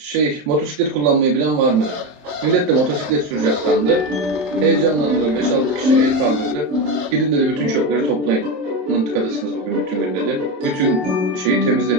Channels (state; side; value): late; left; 27 ms